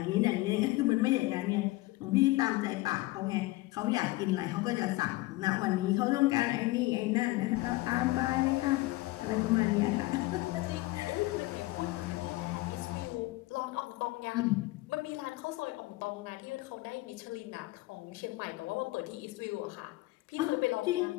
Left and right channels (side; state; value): right; quieter; 20.4 dB